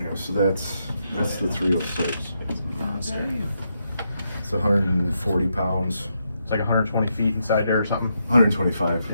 so that's the 306. Monster. It's 140 pounds. It's like 120 feet inside there or something. 125.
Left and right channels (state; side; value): inverted; both; correlation -0.81